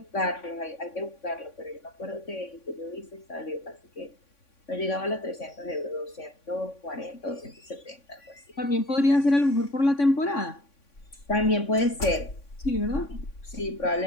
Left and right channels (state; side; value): late; right; 3.6 ms